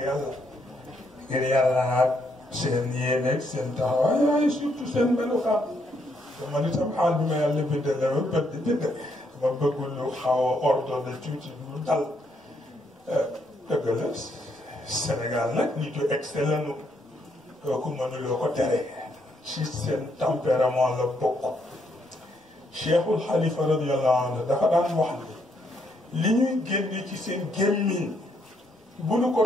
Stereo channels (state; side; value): normal; both; correlation 0.74